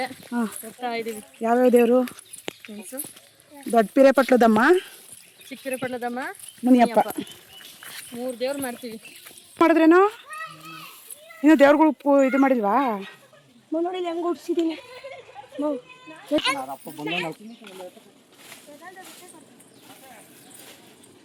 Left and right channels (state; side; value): identical; both; correlation 1.00